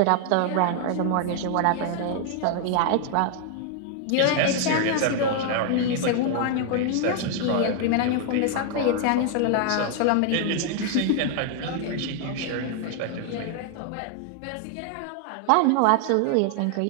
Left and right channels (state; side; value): different; both; correlation 0.00